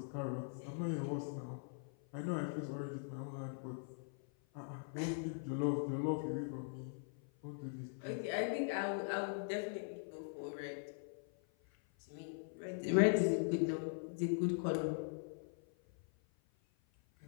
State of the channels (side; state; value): right; silent; 50 dB below the other